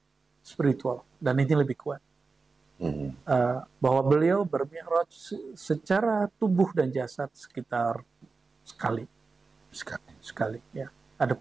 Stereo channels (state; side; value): quieter; left; 4.3 dB